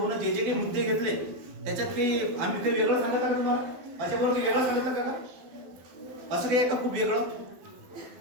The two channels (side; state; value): left; late; 12 ms